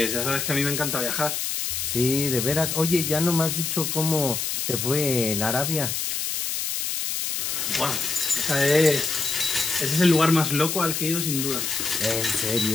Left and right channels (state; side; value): noise; left; hiss, 2 dB below the sound